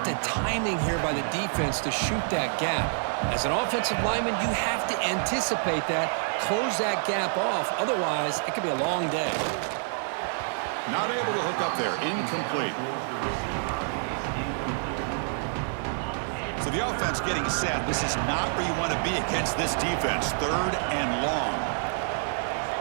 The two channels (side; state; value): left; silent; 60 dB below the other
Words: the timing here by the defense to shoot that gap? As an offensive lineman, you have to anticipate that, close that gap off. Otherwise, it could be a long day. Not able to hook up there. Incomplete. So the offense getting set. This is not where you want to be against this defense. 3rd and long.